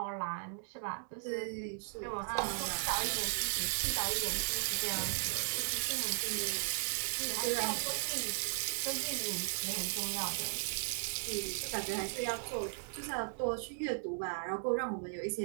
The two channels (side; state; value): left; silent; digital silence